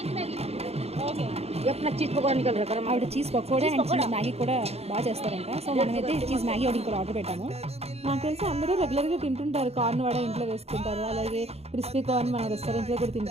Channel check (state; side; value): late; left; 0.30 ms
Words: ఆవిడ cheese pakoda and cheese Maggi కూడా బాగా చేస్తారంట. సో మనమైతే చీజ్ మ్యాగీ ఒకటి కూడా ఆర్డర్ పెట్టాము. నాకు తెలిసి అందరూ రెగ్యులర్గా తింటుంటారు, కార్న్ వడ ఇంట్లో వేసుకుంటారు, అలాగే క్రిస్పీ కార్న్ మన రెస్టారెంట్లో కూడా